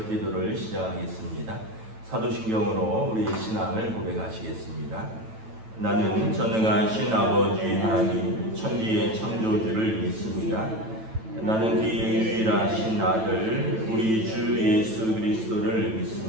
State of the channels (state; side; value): late; left; 9.1 ms